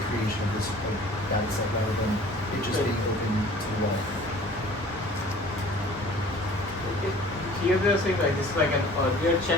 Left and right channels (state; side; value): normal; both; correlation 0.48